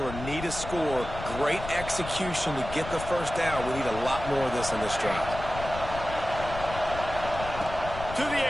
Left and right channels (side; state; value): left; noise; rumble, 10 dB below the sound